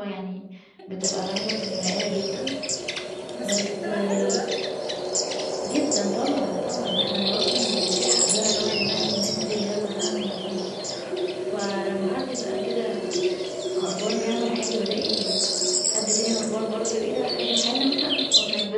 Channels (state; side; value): identical; both; correlation 1.00